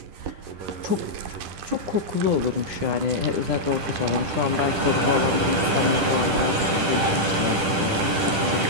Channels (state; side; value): late; left; 10 ms